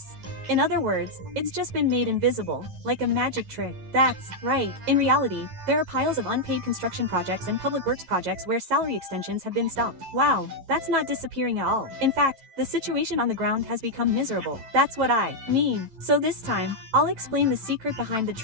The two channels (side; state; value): left; late; 11 ms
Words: In other words, it's just been made invisible, like a magic trick. That's right. In reality, there are piles of unpaid construction projects and public works projects where salary extensions have been stopped. Wow, that's not disappearing at all. In fact, the situation on the ground has become miserable. That's what I mean. So this time, I'll explain the secret behind the